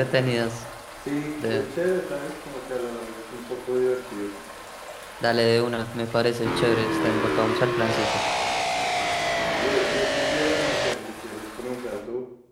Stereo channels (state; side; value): identical; both; correlation 1.00